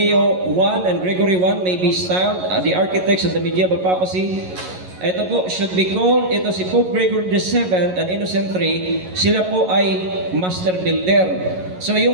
I and Gregory I may be styled the architects of the medieval papacy, ito po should be called, ito si Pope Gregory VII and Innocent III, sila po ay master builder. So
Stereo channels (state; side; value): late; left; 11 ms